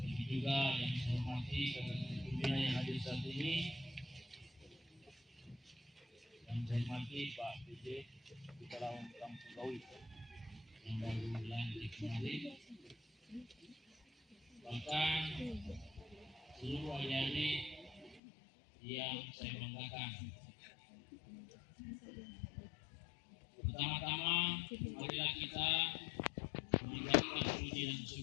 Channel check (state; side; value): drops out; right; at 18.2 s